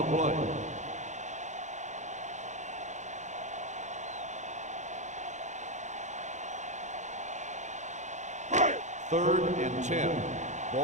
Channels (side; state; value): left; late; 0.34 ms